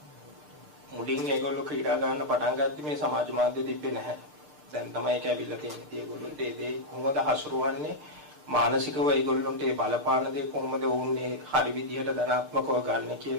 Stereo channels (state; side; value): late; left; 6.7 ms